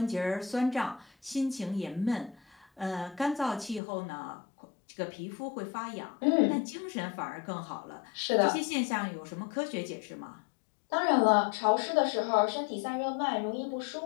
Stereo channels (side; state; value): right; drops out; at 3.8 s